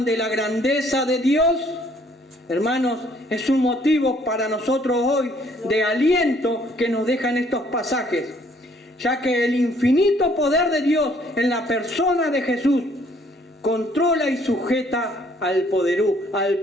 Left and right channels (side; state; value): both; normal; correlation 0.63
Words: de la grandeza de Dios. Hermanos, es un motivo para nosotros hoy de aliento que nos dejan estos pasajes, ya que el infinito poder de Dios en la persona de Jesús controla y sujeta al